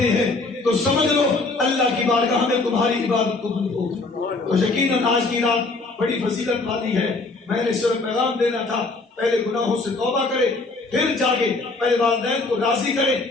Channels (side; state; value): right; quieter; 3.5 dB